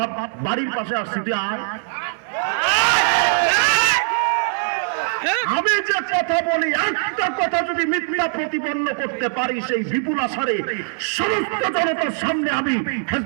বাড়ির পাশে আসছি, তুই আয়। আমি যে কথা বলি, একটা কথা যদি মিথ্যা প্রতিপন্ন করতে পারি, সেই বিপুল আশারে সমস্ত জনতার সামনে আমি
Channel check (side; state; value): left; silent; digital silence